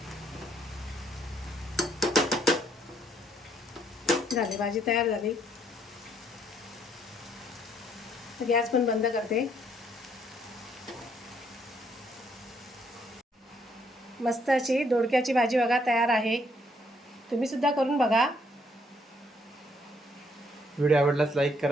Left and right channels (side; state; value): both; normal; correlation 0.69